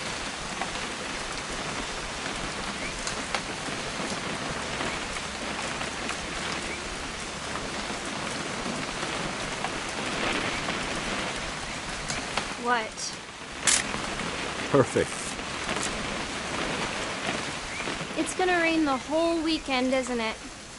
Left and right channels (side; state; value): both; identical; correlation 1.00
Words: What? Perfect. It's gonna rain the whole weekend, isn't it?